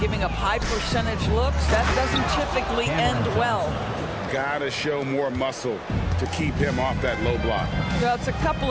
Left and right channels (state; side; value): identical; both; correlation 1.00